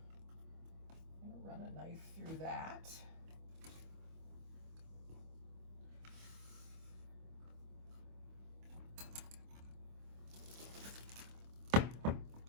I'm going to run a knife through that.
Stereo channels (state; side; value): late; left; 25 ms